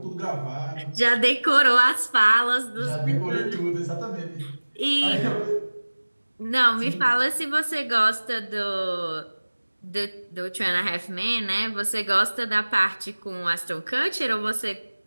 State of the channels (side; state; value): both; inverted; correlation -1.00